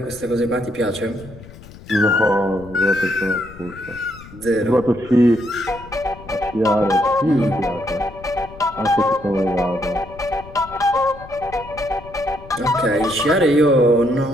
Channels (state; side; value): noise; left; rumble, 18 dB below the sound